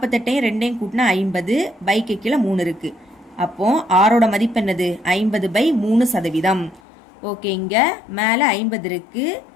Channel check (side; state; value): right; drops out; at 6.8 s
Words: 2ஐயும் கூட்டினா 50. பைக்கு கீழே 3 இருக்கு. அப்போ ஆரோட மதிப்பு என்னது? 50/3%. ஓகே. இங்க மேல 50 இருக்கு.